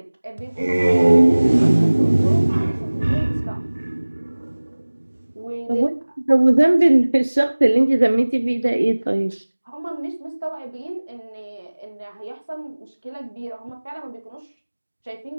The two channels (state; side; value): inverted; both; correlation -1.00